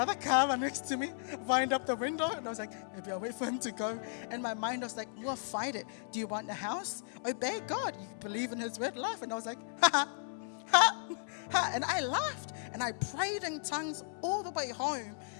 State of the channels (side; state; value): right; silent; digital silence